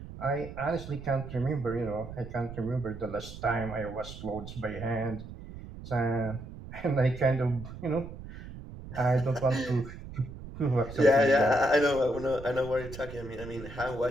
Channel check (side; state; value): right; noise; rumble, 12 dB below the sound